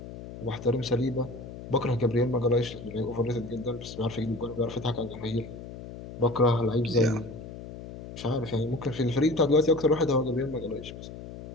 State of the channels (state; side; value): noise; left; hum, 12 dB below the sound